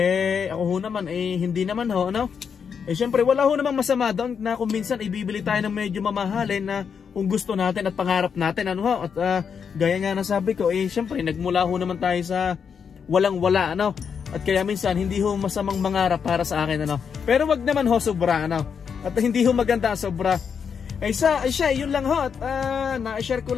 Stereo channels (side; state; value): right; quieter; 6.7 dB